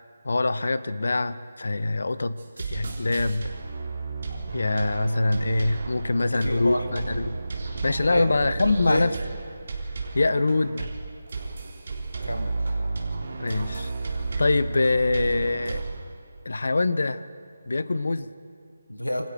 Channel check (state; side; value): inverted; both; correlation -0.95